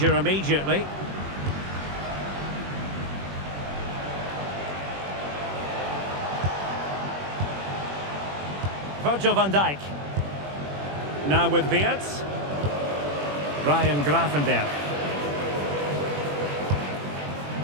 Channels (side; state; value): left; late; 21 ms